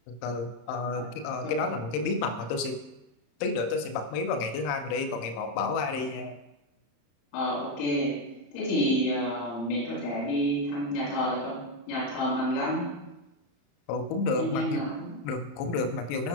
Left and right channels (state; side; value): late; right; 34 ms